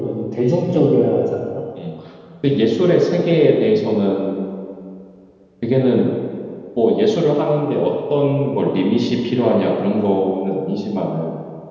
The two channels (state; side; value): identical; both; correlation 1.00